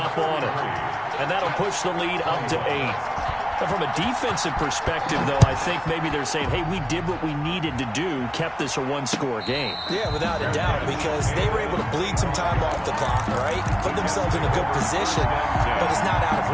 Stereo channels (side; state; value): both; identical; correlation 1.00